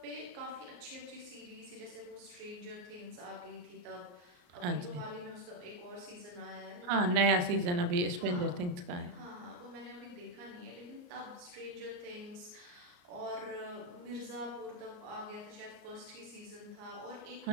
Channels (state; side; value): late; left; 34 ms